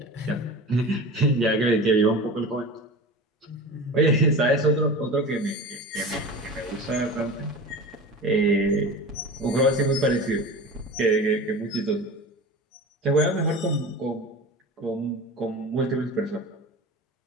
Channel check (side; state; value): both; normal; correlation 0.33